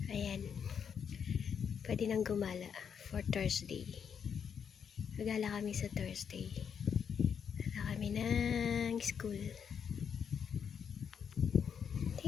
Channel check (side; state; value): right; quieter; 7.3 dB